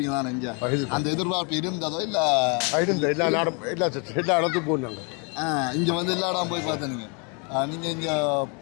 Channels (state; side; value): quieter; right; 35.4 dB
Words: தானே இங்கே? அந்த எதிர்பார்ப்பு இருந்ததோ இல்லை? இருந்த எல்லா இடத்துக்கும் போனாங்க. இங்கே வந்து எல்லா இடம் போய் பார்த்தீங்க. நீங்கள்